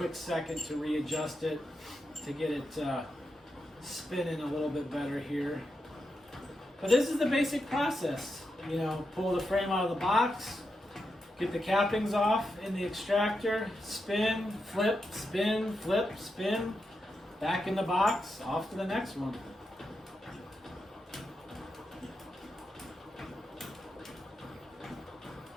second to readjust it to get it spinning a little bit better here. But this is the basic process. Pull the frame out of the box, get the cappings off in the extractor, spin, flip, spin, flip, spin, back in the box, off to the next one.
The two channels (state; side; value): normal; both; correlation 0.86